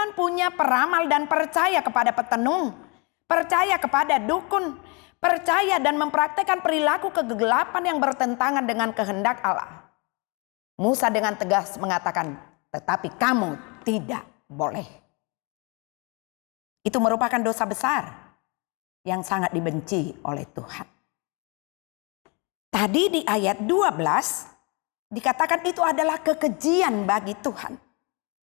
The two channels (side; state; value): right; quieter; 31.1 dB